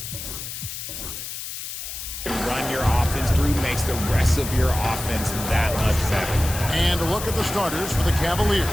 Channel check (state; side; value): noise; left; hiss, 8 dB below the sound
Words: run your offense through makes the rest of your offense that much better. And a look at the starters for the Cavaliers.